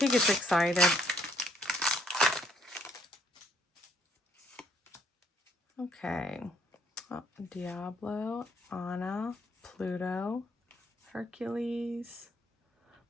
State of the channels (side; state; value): both; normal; correlation 0.67